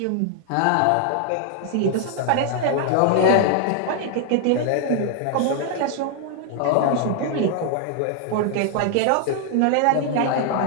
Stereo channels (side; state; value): both; different; correlation 0.00